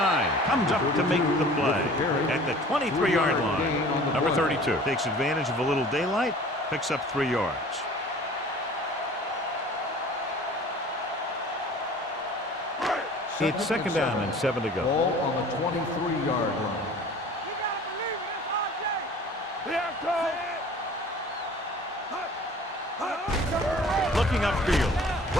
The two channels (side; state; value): both; normal; correlation 0.46